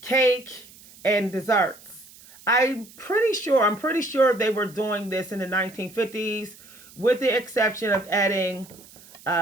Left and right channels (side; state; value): right; noise; hiss, 22 dB below the sound